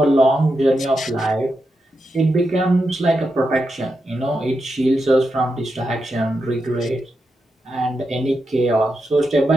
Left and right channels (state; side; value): normal; both; correlation 0.86